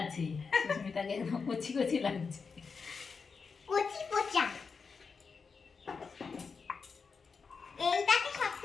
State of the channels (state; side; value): quieter; right; 5.2 dB